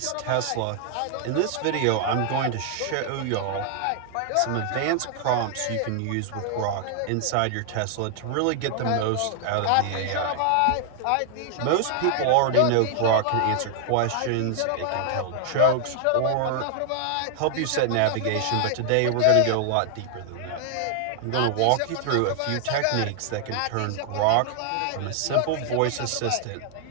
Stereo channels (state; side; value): different; both; correlation 0.00